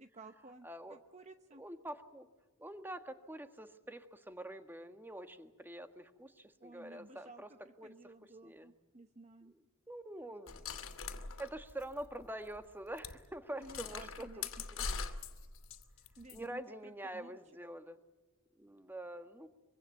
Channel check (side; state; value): both; normal; correlation 0.63